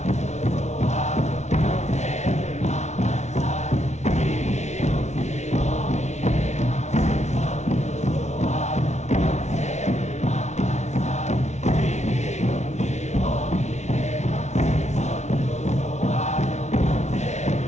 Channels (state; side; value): late; right; 0.32 ms